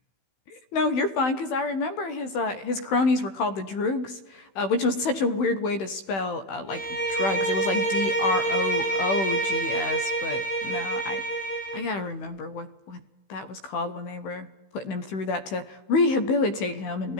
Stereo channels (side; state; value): right; late; 15 ms